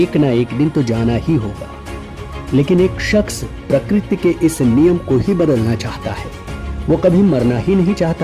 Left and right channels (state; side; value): identical; both; correlation 1.00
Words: ना एक दिन तो जाना ही होगा, लेकिन एक शख्स प्रकृति के इस नियम को ही बदलना चाहता है। वो कभी मरना ही नहीं